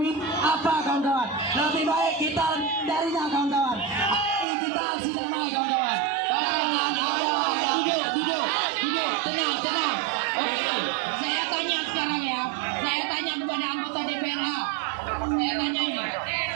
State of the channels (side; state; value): left; drops out; at 4.5 s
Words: apa kawan-kawan. Lebih baik kita darinya kawan-kawan. Ayo kita aksi damai kawan-kawan. Tenang. Oke, saya tanya sekarang ya. Saya tanya kepada anggota DPR. Saya tanya ini.